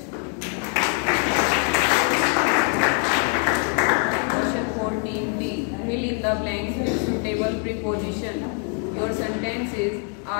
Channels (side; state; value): right; quieter; 38.8 dB